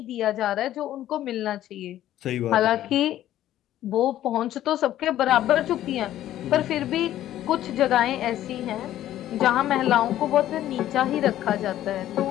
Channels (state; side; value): quieter; right; 12.9 dB